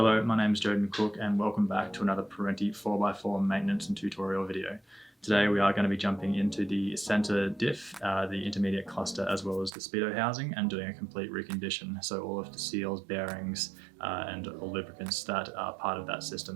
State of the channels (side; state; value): left; drops out; at 9.7 s